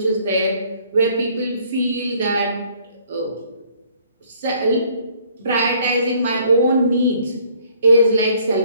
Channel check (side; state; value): both; inverted; correlation -0.60